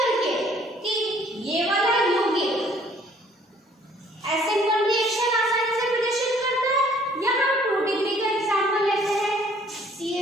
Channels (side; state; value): both; normal; correlation 0.59